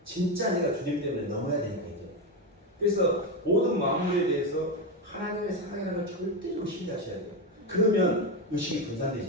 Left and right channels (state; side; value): normal; both; correlation 0.12